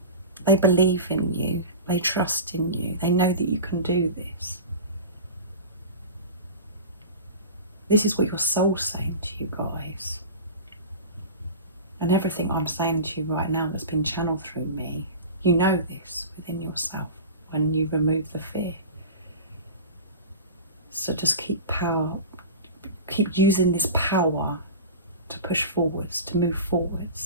They believe in you, they trust in you, they know that you can do this. This is what your soul's saying to you, guys. And everything I'm saying to you right now that's been channeled through me, you know this within yourself when you remove the fear. So just keep using this power to push forwards, to move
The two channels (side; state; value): both; inverted; correlation -0.32